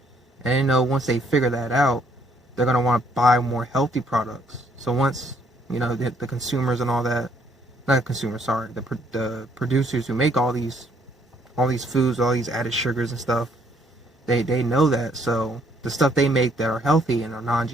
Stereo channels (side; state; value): both; normal; correlation 0.67